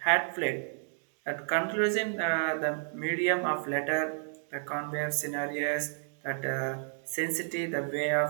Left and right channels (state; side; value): silent; left; digital silence